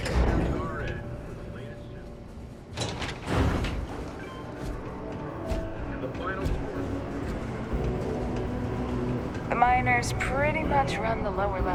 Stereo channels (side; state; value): both; identical; correlation 1.00